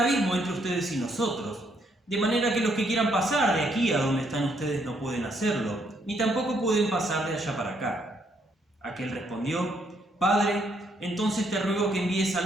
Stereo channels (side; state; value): both; normal; correlation 0.72